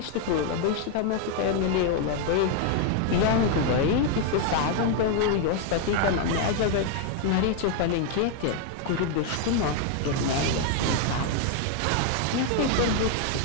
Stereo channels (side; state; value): both; different; correlation 0.00